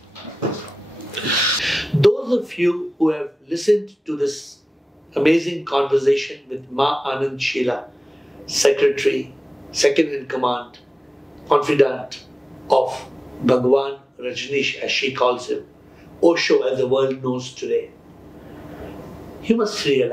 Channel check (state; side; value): normal; both; correlation 0.96